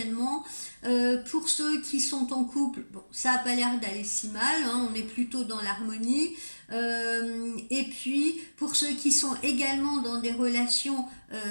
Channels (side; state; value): both; inverted; correlation -1.00